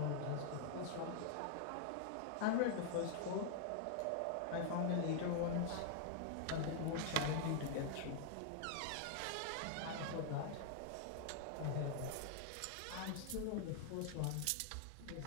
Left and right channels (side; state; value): both; different; correlation 0.00